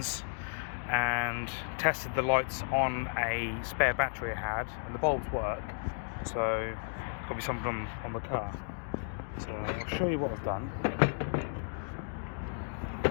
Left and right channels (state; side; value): silent; right; digital silence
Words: and tested the lights on a spare battery I had, and the bulbs work, so got be something on the car. So I'll show you what I've done.